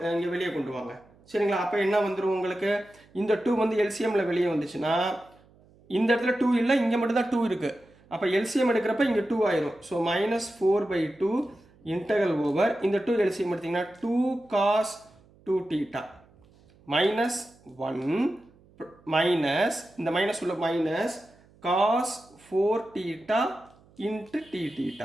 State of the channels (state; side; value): noise; right; hum, 29 dB below the sound